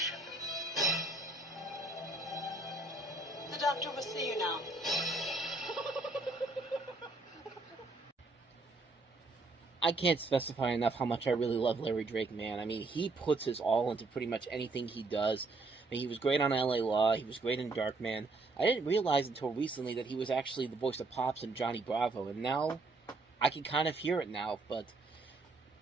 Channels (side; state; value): left; quieter; 3.3 dB